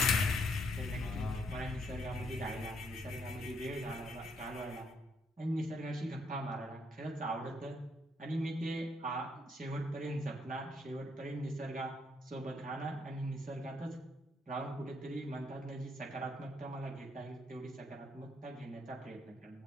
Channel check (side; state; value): both; normal; correlation 0.73